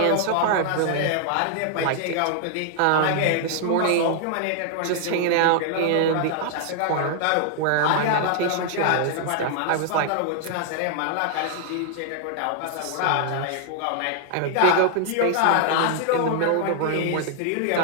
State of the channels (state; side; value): different; both; correlation 0.00